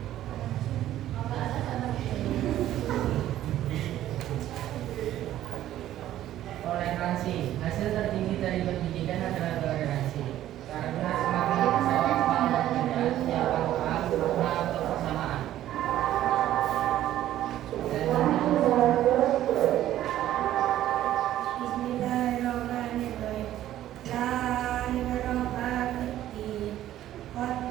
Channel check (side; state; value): left; quieter; 13.0 dB